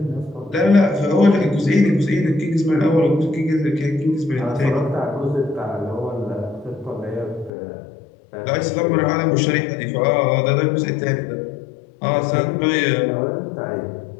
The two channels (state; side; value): drops out; right; at 7.5 s